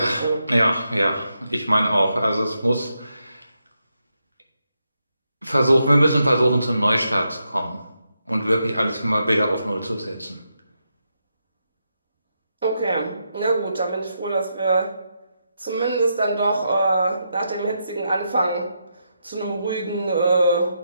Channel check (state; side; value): inverted; both; correlation -0.83